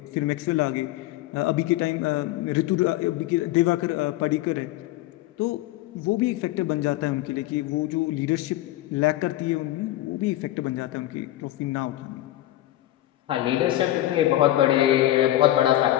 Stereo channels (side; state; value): right; quieter; 15.1 dB